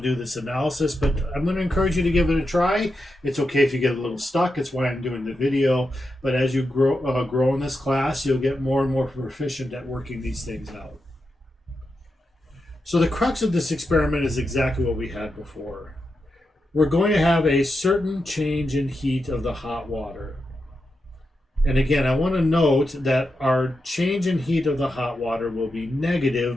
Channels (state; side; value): normal; both; correlation 0.87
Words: this analysis, but I'm going to encourage you to give it a try. It's okay if you get a little stuck. It's why I'm doing the video. But as you grow in this class, you'll get more and more proficient at working these things out. So the crux of this experiment is exactly what we had before. We're going to have a certain change in heat of the hot water. And again, I want to note that our change in heat of the hot water will be